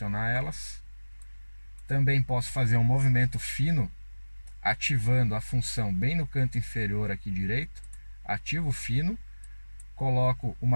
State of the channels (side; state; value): both; inverted; correlation -1.00